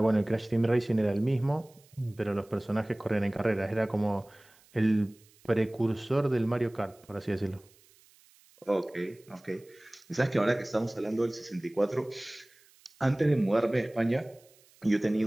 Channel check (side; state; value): right; noise; hiss, 29 dB below the sound